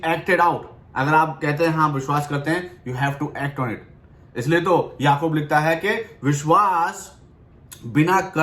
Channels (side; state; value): both; identical; correlation 1.00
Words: out. अगर आप कहते हैं हाँ विश्वास करते हैं, you have to act on it. इसलिए तो याकूब लिखता है कि विश्वास बिना